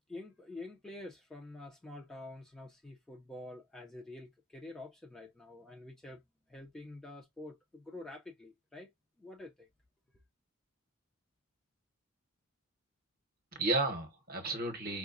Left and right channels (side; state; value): both; normal; correlation 0.19